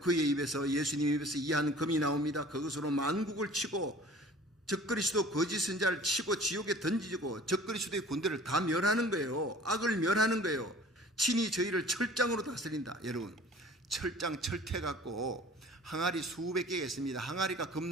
그의 입에서, 예수님 입에서 이한 금이 나옵니다. 그것으로 만국을 치고 적그리스도 거짓 선자를 치고 지옥에 던지고 적그리스도의 군대를 다 멸하는 거예요. 악을 멸하는 거예요. 친히 저희를 철장으로 다스린다. 여러분, 철장, 철퇴 갖고 항아리 수백 개가 있습니다. 항아리가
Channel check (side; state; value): both; normal; correlation 0.47